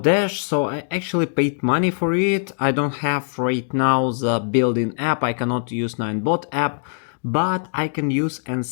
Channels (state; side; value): silent; right; digital silence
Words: so I actually paid money for it. I don't have right now the built-in app, I cannot use Ninebot app, but I can use and